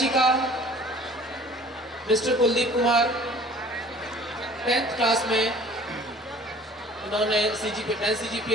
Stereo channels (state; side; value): normal; both; correlation 0.50